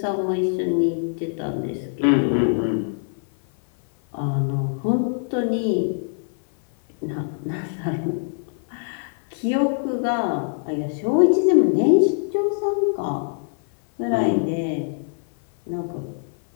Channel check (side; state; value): right; silent; 56 dB below the other